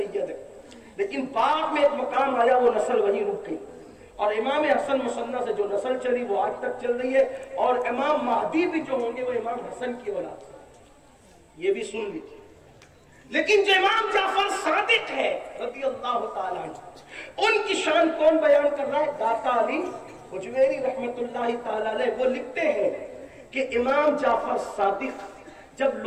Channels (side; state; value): both; identical; correlation 1.00